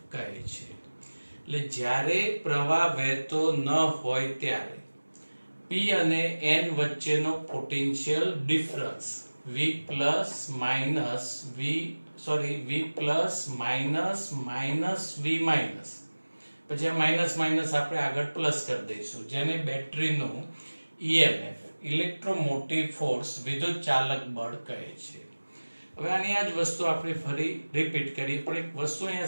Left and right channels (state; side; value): inverted; both; correlation -1.00